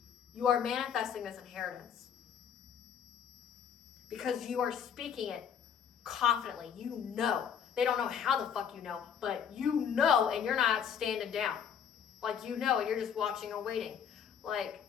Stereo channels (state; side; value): quieter; right; 8.0 dB